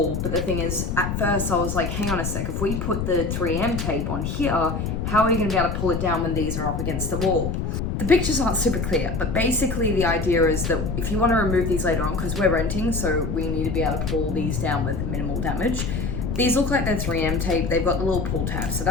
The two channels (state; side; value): noise; left; rumble, 2 dB below the sound